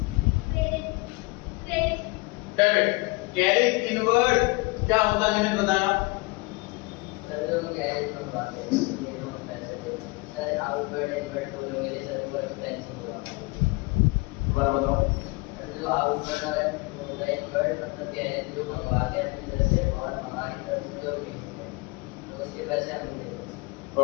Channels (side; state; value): right; quieter; 25.4 dB